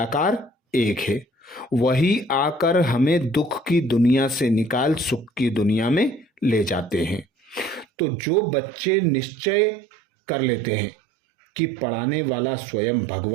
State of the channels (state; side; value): drops out; left; at 7.9 s